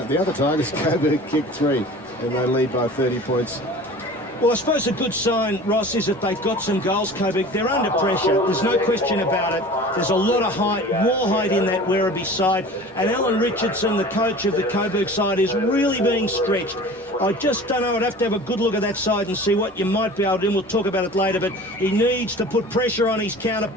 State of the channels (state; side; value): normal; both; correlation 0.40